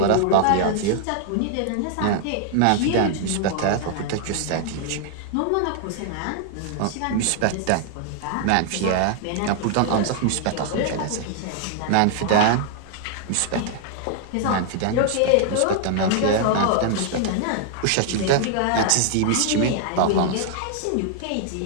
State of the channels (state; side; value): different; both; correlation 0.00